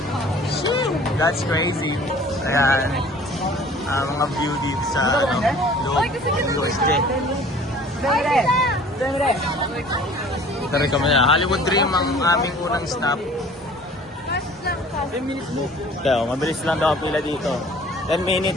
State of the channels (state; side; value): normal; both; correlation 0.49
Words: That's crazy. Ayan. Mga view dito sa USJ. Ito rin kami na. Hollywood Dream ang aming unang stop. 10 minutes mo. Kaya, mabilis lang daw ang pila dito. 10